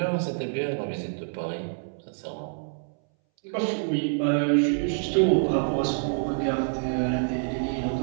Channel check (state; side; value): silent; left; 60 dB below the other